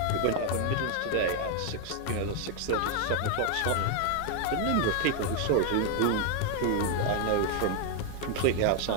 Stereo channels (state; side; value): different; both; correlation 0.01